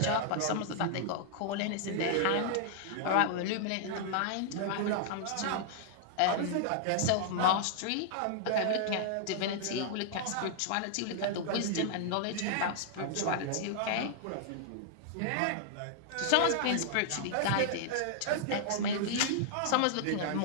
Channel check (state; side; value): different; both; correlation -0.01